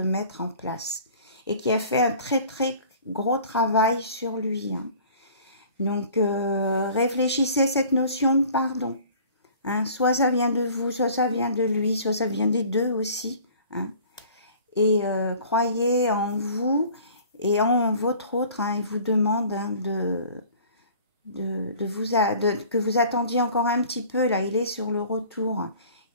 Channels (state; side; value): inverted; both; correlation -0.48